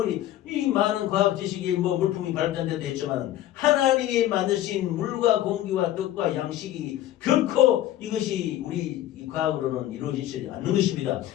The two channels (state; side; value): quieter; right; 13.2 dB